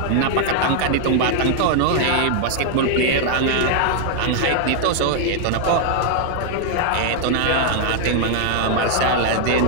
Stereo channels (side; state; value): both; different; correlation 0.00